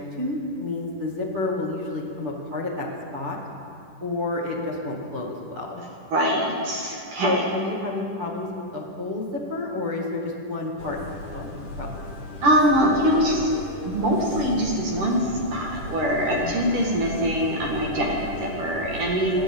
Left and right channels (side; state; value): left; late; 10 ms